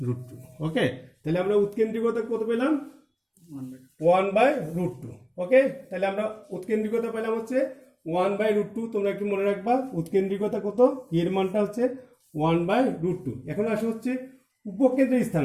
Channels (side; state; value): both; identical; correlation 1.00